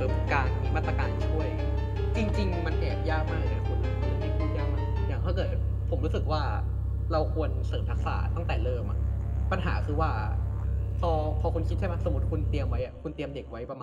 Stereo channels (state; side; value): identical; both; correlation 1.00